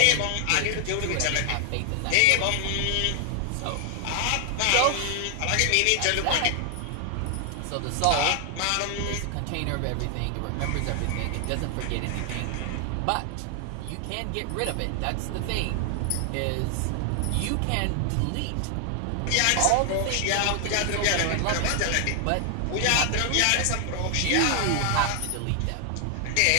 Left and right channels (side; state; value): both; different; correlation 0.00